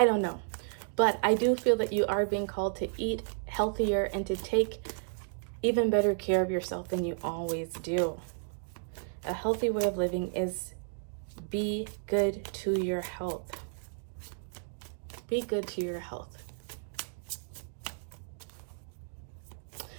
don't know. But I do feel that you are being called to eat healthier and to take even better care of yourself than you always do. A healthy way of living is be good to your health. Be good to your health.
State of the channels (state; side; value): silent; left; digital silence